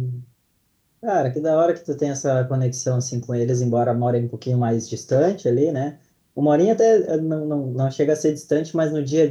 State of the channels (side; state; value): both; identical; correlation 1.00